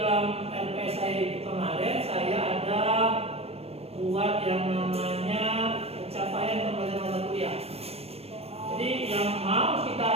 LPS saya itu kemarin saya ada buat yang namanya pencapaian pembelajaran mata kuliah. Jadi yang mau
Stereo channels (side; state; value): left; late; 0.29 ms